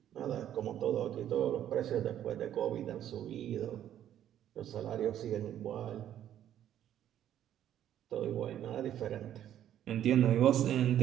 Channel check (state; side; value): quieter; left; 11.0 dB